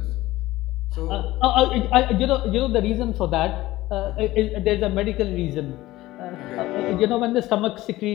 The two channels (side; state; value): right; quieter; 17.3 dB